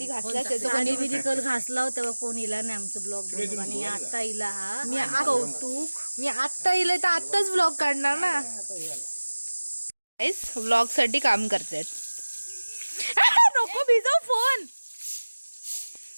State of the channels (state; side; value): inverted; both; correlation -1.00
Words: घासला लादी बिदी कल घासला तेव्हा कोण इला नाही आमचं ब्लॉग बनवून. आणि आता इला हा मी कौतुक. मी आत्ता इले तर आत्ताच ब्लॉग काढणार ना. ब्लॉग साठी काम करतात. नको भिजव फोन.